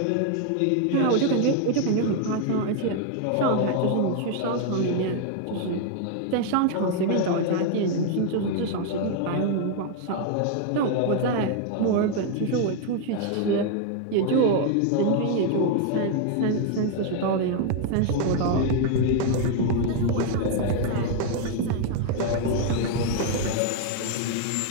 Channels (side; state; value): both; different; correlation 0.00